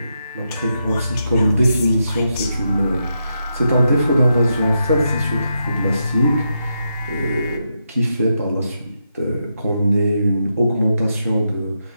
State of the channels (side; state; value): both; inverted; correlation -0.84